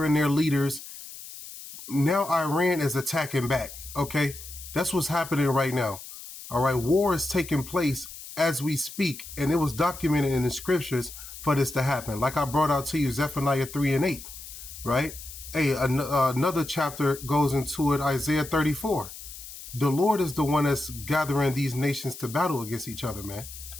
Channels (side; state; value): left; noise; hiss, 13 dB below the sound